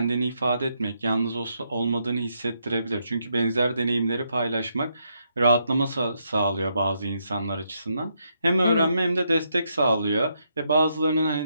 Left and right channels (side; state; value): both; inverted; correlation -0.78